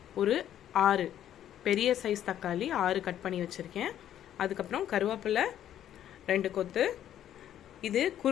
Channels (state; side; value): quieter; right; 11.0 dB